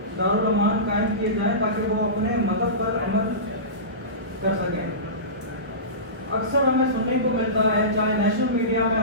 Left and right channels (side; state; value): left; late; 1.3 ms